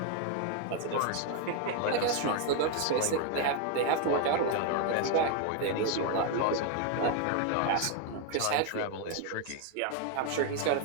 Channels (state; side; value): different; both; correlation 0.01